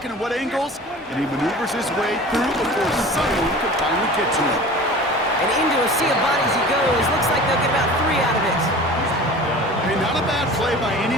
and at what angles, and he maneuvers his way through before someone can finally get to him. And into a sea of bodies he goes. Looks like they'll get about 3 out of it. Hey, not a bad play by any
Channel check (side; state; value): both; normal; correlation 0.40